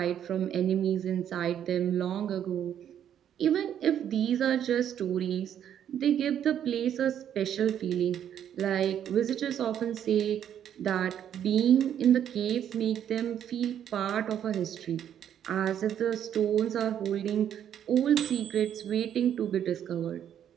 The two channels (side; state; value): left; quieter; 9.7 dB